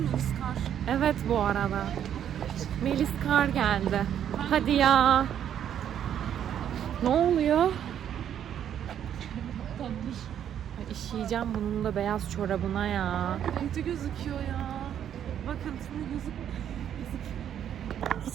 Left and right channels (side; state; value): left; quieter; 9.7 dB